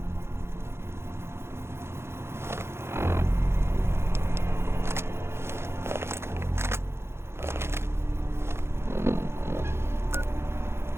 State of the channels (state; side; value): late; left; 0.12 ms